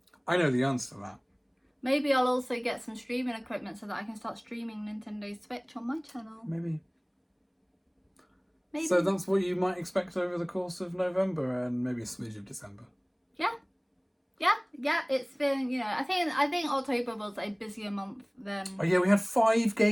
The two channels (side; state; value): both; identical; correlation 1.00